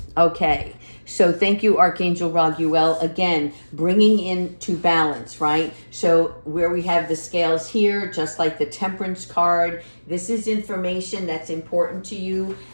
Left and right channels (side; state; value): both; inverted; correlation -1.00